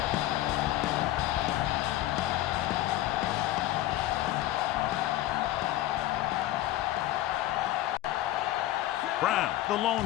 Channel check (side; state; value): right; quieter; 14.9 dB